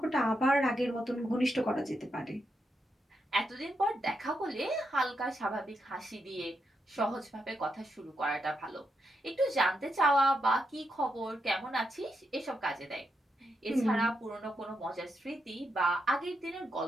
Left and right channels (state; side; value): normal; both; correlation 0.83